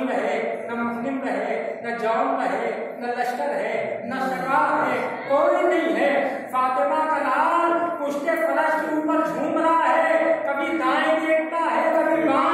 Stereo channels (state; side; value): identical; both; correlation 1.00